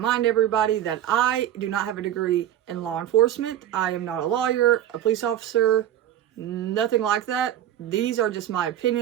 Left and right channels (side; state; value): left; quieter; 11.4 dB